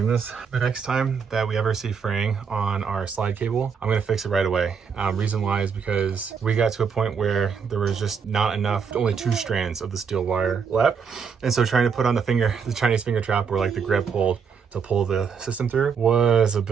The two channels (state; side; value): quieter; left; 6.3 dB